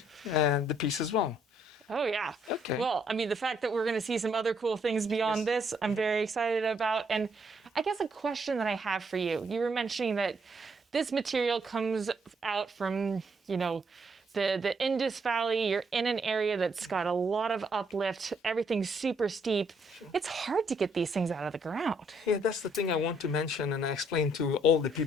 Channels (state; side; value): normal; both; correlation 0.71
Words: the piece as well. Oh, yeah. Okay. Well, I mean, the fact that we're going to see some other cool things beyond this, I'm very excited about. And I guess a question that I have for you, you were mentioning that this material comes out from, you know, the Indus Valley. You're in an area that's got a lot of uplift. Everything's super steep. It's hard to get these things out of the ground. Yeah, that's the thing I want to mention, and I explain to all the